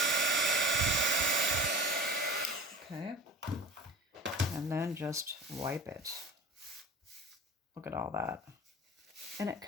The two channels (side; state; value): both; normal; correlation 0.37